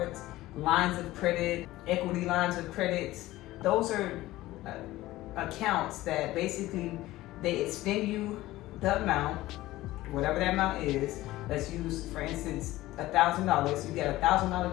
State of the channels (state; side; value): quieter; right; 17.0 dB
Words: lines of credit, equity lines of credits. Those are accounts that basically they extend you the amount, whatever that amount is. Let's use, for instance, $1,000. You get a $1,000